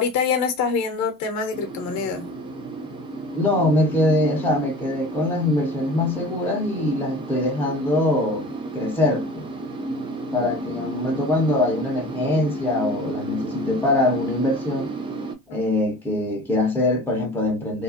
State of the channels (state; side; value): normal; both; correlation 0.40